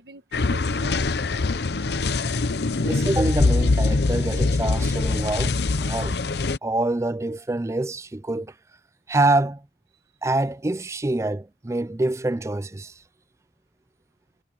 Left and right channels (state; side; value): normal; both; correlation 0.73